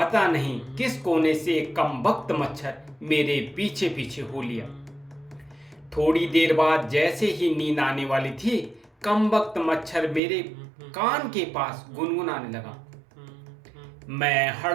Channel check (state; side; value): drops out; left; at 10.2 s